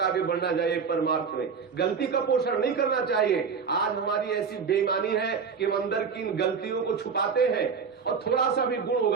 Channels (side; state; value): left; quieter; 5.9 dB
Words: आगे बढ़ना चाहिए परमार्थ में। गलती का पोषण नहीं करना चाहिए। आज हमारी ऐसी बेईमानी है कि हम अंदर की इन गलतियों को छुपाते हैं और थोड़ा सा भी गुण